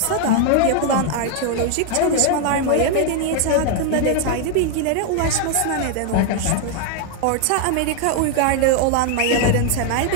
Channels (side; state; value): both; different; correlation 0.00